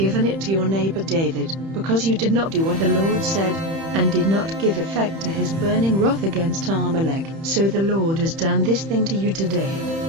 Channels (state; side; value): late; left; 31 ms